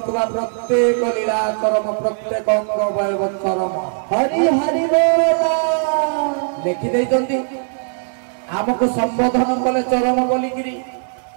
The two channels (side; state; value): left; silent; digital silence